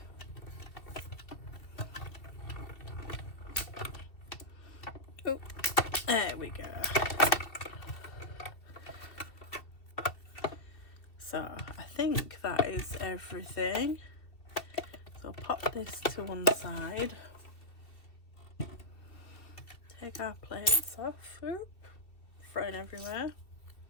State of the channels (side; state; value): right; late; 2.7 ms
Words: Oh, there we go. So I think that is everything. So pop this to one side. Take our plates off. Oop, thrown everywhere.